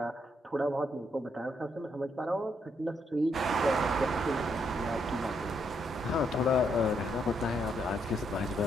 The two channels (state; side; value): normal; both; correlation 0.76